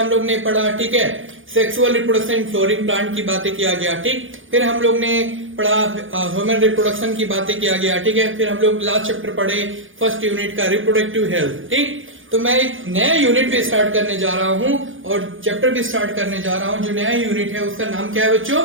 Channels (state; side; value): late; left; 0.58 ms